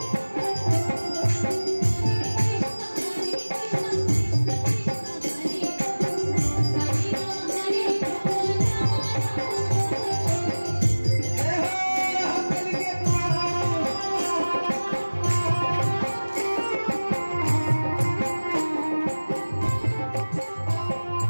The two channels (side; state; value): both; inverted; correlation -1.00